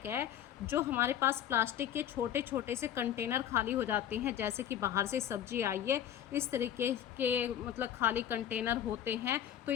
है, जो हमारे पास प्लास्टिक के छोटे छोटे से कंटेनर खाली हो जाते हैं, जैसे कि बाहर से सब्जी आई है, इस तरीके के मतलब खाली कंटेनर होते हैं, तो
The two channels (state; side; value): quieter; right; 10.5 dB